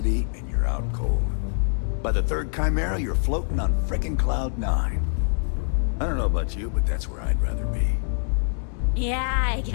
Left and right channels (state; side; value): silent; right; digital silence